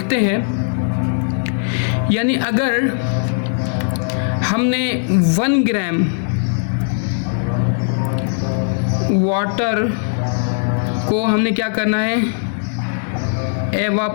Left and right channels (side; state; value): right; silent; digital silence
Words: हैं, यानी अगर हमने 1 ग्राम वाटर को हमने क्या करना है,